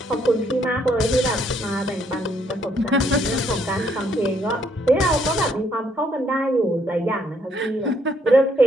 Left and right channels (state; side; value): normal; both; correlation 0.69